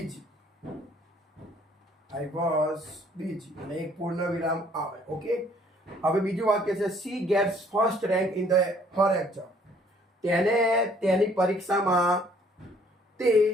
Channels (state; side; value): normal; both; correlation 0.60